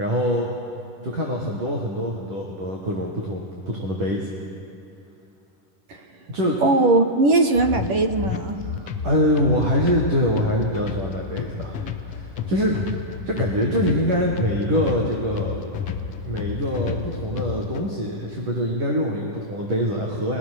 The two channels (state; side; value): late; left; 11 ms